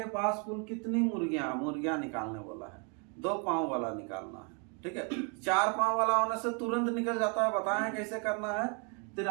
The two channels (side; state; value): left; quieter; 36.9 dB